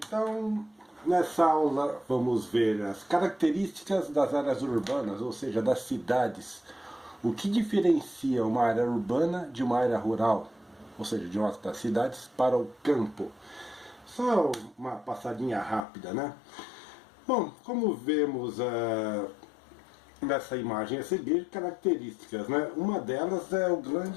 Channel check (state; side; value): drops out; right; at 15.8 s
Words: nessa aula vamos ver as características das áreas urbanas, ou seja, das cidades. O que diferencia uma área urbana de uma área rural, ou seja, de uma das cidades para o campo. Só uma passadinha rápida, né? Bom, como vemos nessa imagem a seguir, características, né? Uma delas é o